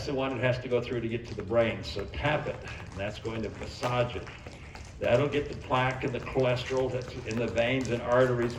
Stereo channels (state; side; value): identical; both; correlation 1.00